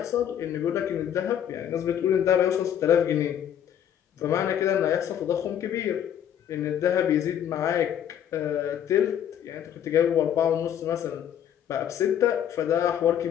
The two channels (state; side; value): quieter; right; 9.7 dB